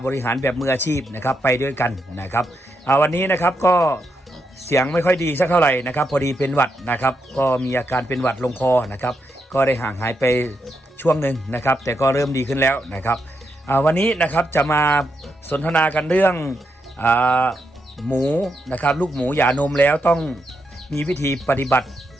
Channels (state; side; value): normal; both; correlation 0.82